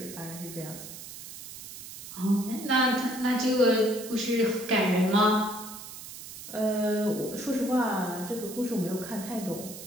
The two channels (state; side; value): noise; right; hiss, 12 dB below the sound